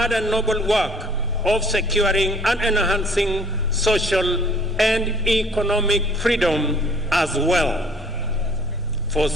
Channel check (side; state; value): both; normal; correlation 0.55